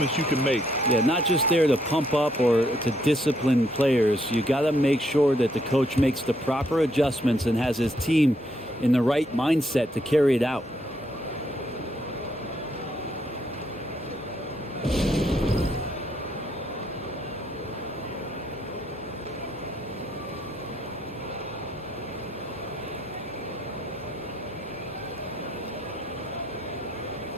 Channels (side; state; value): both; normal; correlation 0.72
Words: you can make. Yeah, not just there to pump up or to discipline players. You got to make sure that the coach makes the proper adjustments and has his team in the right mindset to carry it out.